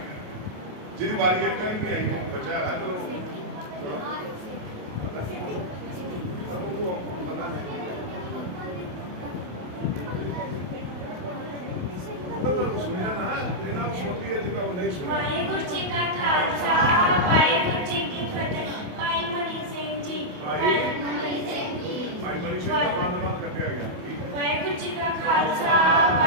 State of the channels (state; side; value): late; left; 28 ms